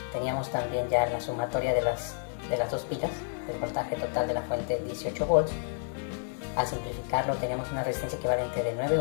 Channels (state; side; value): silent; right; 58 dB below the other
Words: teníamos también ya la sumatoria de las dos pilas, el voltaje total de la fuente 18 volts. Al simplificarlo teníamos una resistencia equivalente de 9